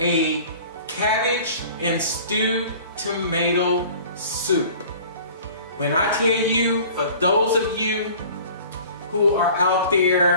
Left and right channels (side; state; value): both; inverted; correlation -0.46